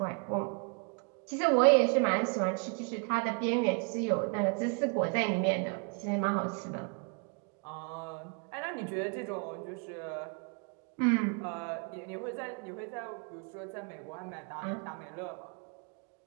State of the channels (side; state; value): left; quieter; 37.8 dB